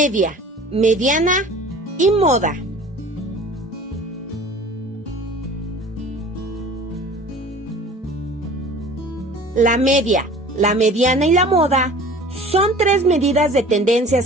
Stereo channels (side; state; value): both; normal; correlation 0.44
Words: mediana y moda. La media, la mediana y la moda son tres medidas de tendencia